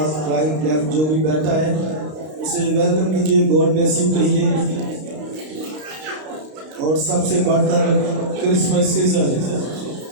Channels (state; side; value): late; left; 32 ms